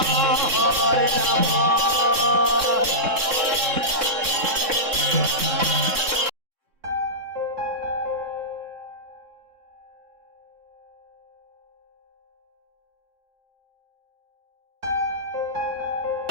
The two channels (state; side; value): late; left; 3.6 ms